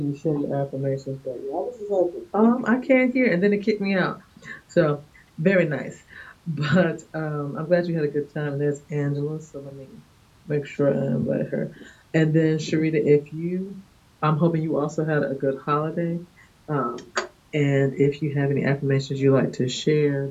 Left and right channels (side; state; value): both; identical; correlation 1.00